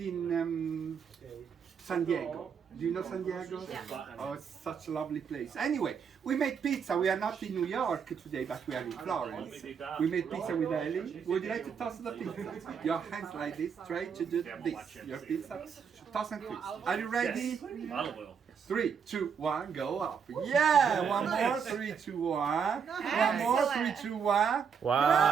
San Diego. Do you know San Diego? Yeah. Oh, it's such a lovely place. Anyway, we made pizza. We are not in New York today, but we are in Florence. We made pizza with Ellie. Would you like to toss the pizza? Your hands like this, try to do this. Your pizza, toss and twist. Are you ready? Olive oil. 3, 2, 1, go up. Yeah, one more. 3, 2, 1. One more. 3, 2, 1.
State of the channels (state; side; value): quieter; left; 6.8 dB